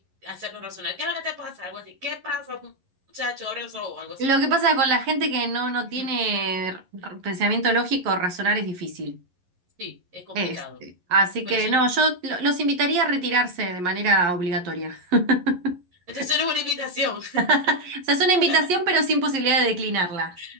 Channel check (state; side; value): late; left; 11 ms